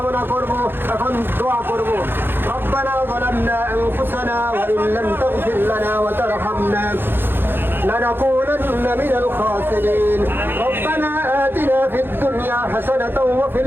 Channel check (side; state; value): left; late; 0.10 ms